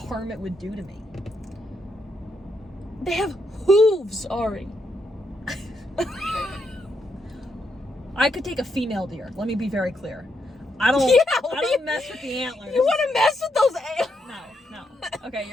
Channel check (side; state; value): both; normal; correlation 0.79